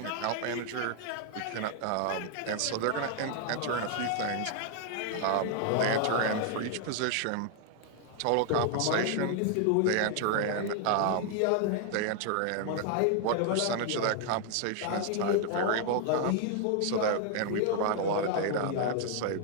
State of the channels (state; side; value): different; both; correlation 0.00